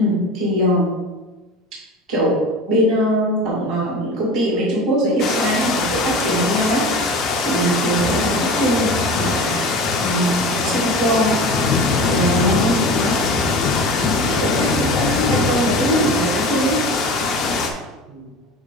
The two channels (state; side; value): normal; both; correlation 0.34